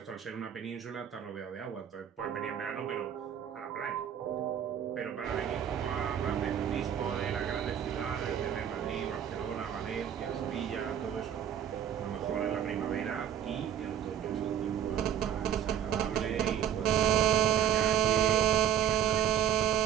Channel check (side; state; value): left; quieter; 9.6 dB